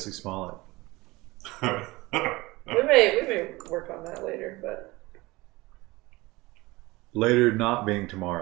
Smollett. We may work on that later, but Later not being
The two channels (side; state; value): left; quieter; 21.4 dB